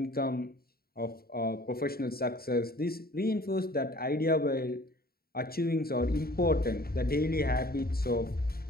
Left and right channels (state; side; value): late; right; 0.44 ms